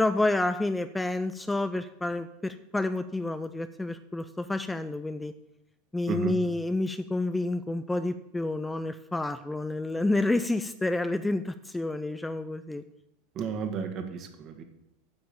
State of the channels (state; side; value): normal; both; correlation 0.90